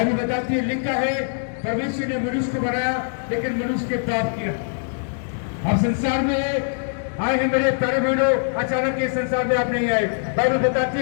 बताती है, लिखा है परमेश्वर ने मनुष्य को बनाया लेकिन मनुष्य के पाप किया। आप संसार में आए हैं मेरे प्यारे बहनों, अचानक ये संसार में आप नहीं आए। बाइबल बताती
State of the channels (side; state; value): right; silent; digital silence